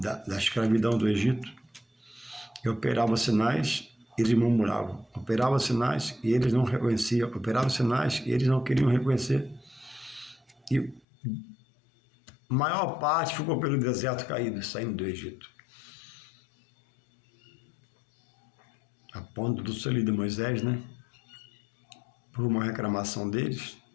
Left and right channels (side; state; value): right; drops out; at 11.0 s